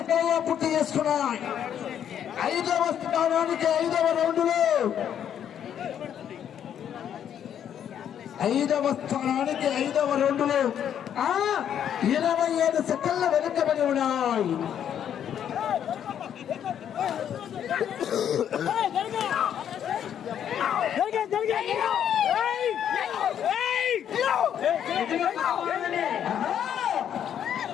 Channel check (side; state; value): right; quieter; 9.4 dB